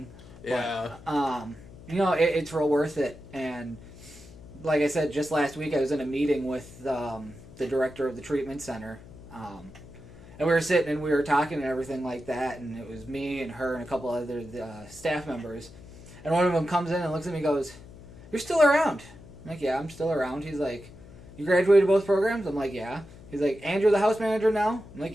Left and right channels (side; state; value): left; noise; hum, 19 dB below the sound